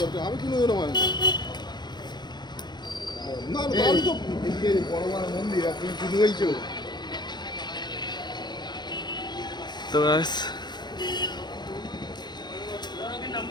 আমি কোনোদিনও মানি না, আমি তো বড় মন্দির আপনি শুধু বলছো তো গাইস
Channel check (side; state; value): right; late; 0.21 ms